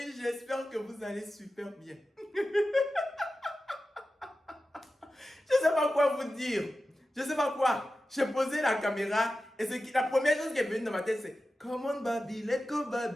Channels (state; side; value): normal; both; correlation 0.93